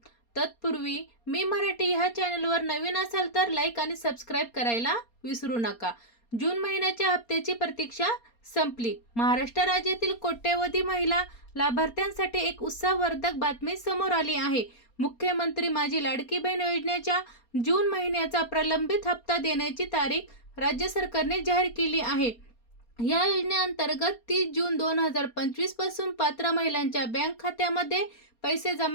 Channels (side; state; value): right; late; 4.3 ms